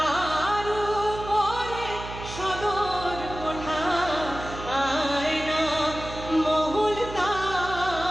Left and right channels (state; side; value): noise; right; hum, 11 dB below the sound